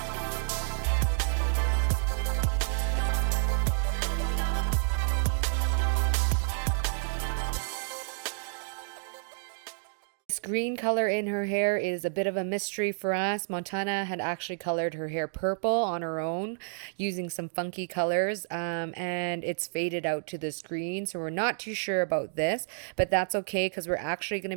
This green color in her hair is a bit of a mystery for us. Montana had actually colored her hair purple on her own using some funky colors, and it's faded out to this green. So we're not too sure about this, but that's okay because we're actually going to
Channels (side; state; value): left; silent; digital silence